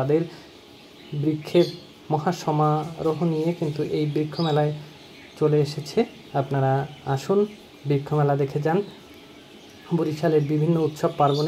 বৃক্ষের মহাসমারোহ নিয়ে কিন্তু এই বৃক্ষ মেলায় চলে এসেছে। আপনারা আসুন, বৃক্ষ মেলা দেখে যান। বরিশালের বিভিন্ন উৎসব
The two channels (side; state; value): both; identical; correlation 1.00